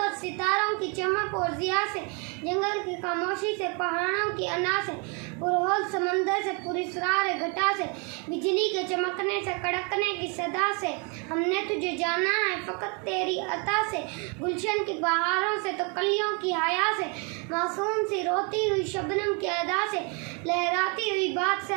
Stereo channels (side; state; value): left; quieter; 34.2 dB